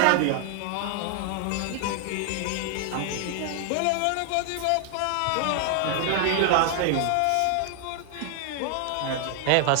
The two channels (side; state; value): both; different; correlation 0.00